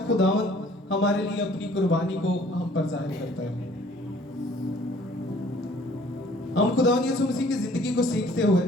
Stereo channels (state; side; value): normal; both; correlation 0.56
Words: خداوند ہمارے لیے اپنی قربانی کو ہم پر ظاہر کرتا ہے۔ ہم خداوند یسوع مسیح کی زندگی کو سیکھتے ہوئے،